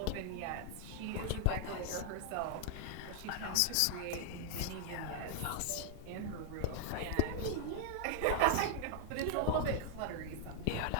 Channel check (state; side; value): different; both; correlation 0.00